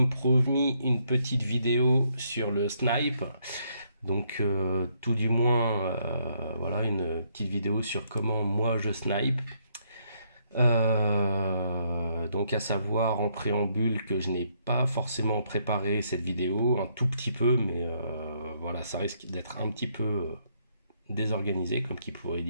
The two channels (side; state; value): both; inverted; correlation -0.73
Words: promis une petite vidéo sur le snipe, donc tout du moins voilà une petite vidéo sur comment moi je snipe. Donc à savoir en préambule que je n'ai pas forcément préparé cette vidéo, un tout petit peu, mais voilà ça risque d'être un petit peu désorganisé comme qui pourrait